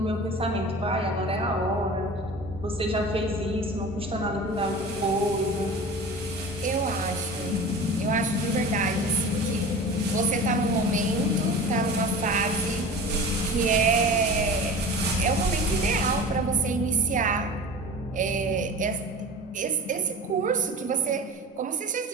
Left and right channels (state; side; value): normal; both; correlation 0.36